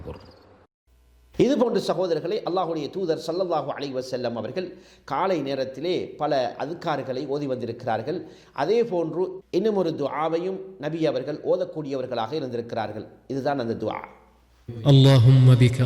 இது போன்ற சகோதரர்களை அல்லாஹ்வுடைய தூதர் ஸல்லல்லாஹு அலைஹி வஸல்லம் அவர்கள் காலை நேரத்திலே பல அதுக்கார்களை ஓதி வந்திருக்கிறார்கள். அதே போன்று இன்னும் ஒரு துஆவையும் நபி அவர்கள் ஓதக்கூடியவர்களாக இருந்திருக்கிறார்கள். இதுதான் அந்த துஆ. اللهم بك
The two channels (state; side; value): identical; both; correlation 1.00